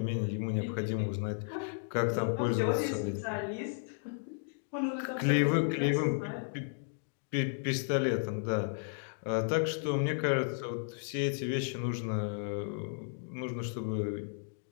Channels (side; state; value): right; silent; digital silence